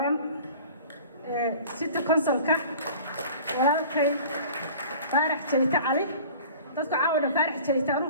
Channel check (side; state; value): both; inverted; correlation -0.44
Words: ستة كونسل ولكن فارح جيت علي dadku caawina faarax jeeyta anu